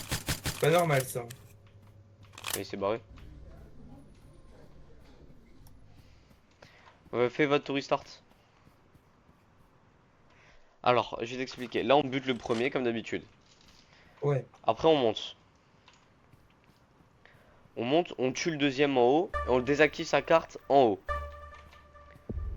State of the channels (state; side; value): identical; both; correlation 1.00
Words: C'est pas normal, ça. Il s'est barré. Fais votre tour restart. Alors, je vais t'expliquer. Là, on bute le premier, comme d'habitude. Ouais. Après, on monte. On monte, on tue le deuxième en haut. Et on désactive sa carte en haut.